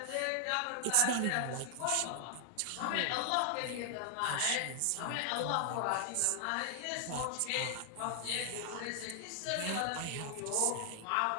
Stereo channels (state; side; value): different; both; correlation 0.00